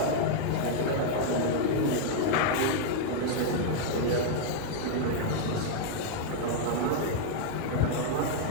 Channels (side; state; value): both; different; correlation -0.01